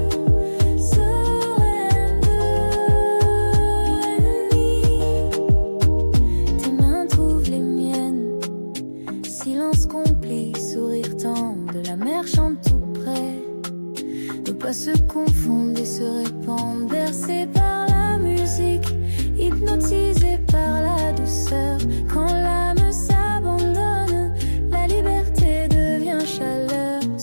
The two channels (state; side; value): inverted; both; correlation -1.00